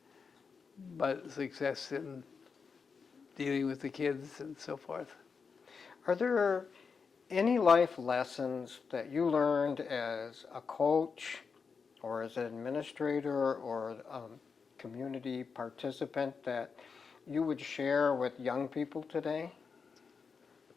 but success in dealing with the kids and so forth. Are there any life lessons that you learned as a coach or as an administrator or a community participant that you would share with young people today?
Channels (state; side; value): quieter; right; 5.5 dB